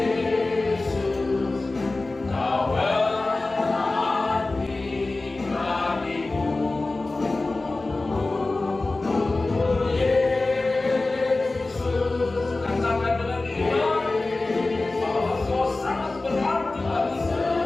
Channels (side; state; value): right; quieter; 3.2 dB